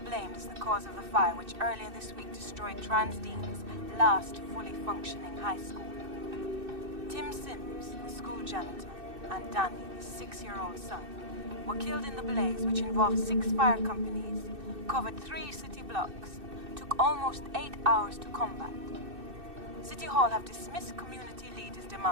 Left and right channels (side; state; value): left; late; 2.6 ms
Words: as the cause of the fire which earlier this week destroyed Transdean's last fully functioning high school. Tim Sims, the school janitor, and Danny, his 6-year-old son, were killed in the blaze which involved 6 fire companies, covered 3 city blocks, took almost 8 hours to combat. City Hall have dismissed community leaders'